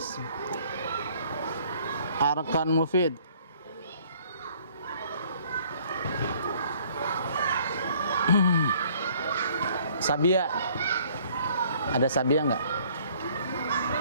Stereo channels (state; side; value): inverted; both; correlation -0.59